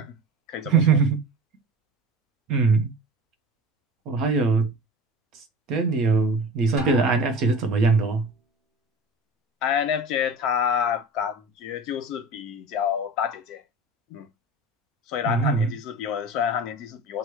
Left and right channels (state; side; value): normal; both; correlation 0.35